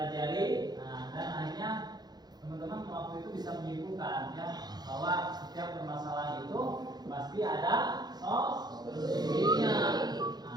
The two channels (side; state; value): left; late; 0.20 ms